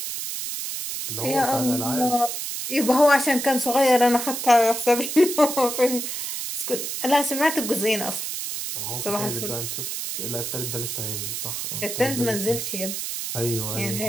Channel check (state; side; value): noise; right; hiss, 4 dB below the sound